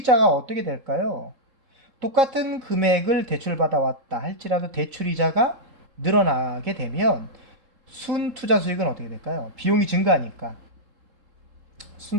어떻게 될까요? 똑같은 금액을 대출받아왔다 할지라도 대출이자가 늘어나게 되면 순투자 수익은 어떻게 될까요? 비용이 증가하니까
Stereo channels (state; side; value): late; left; 3.7 ms